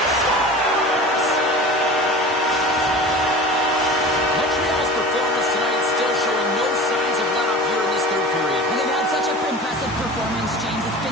Montreal's performance tonight still showing no signs of let-up here in this third period. And they've had such an impressive performance, James. It's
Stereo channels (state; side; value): normal; both; correlation 0.36